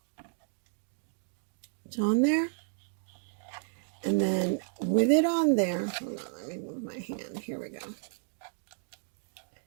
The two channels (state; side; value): silent; left; digital silence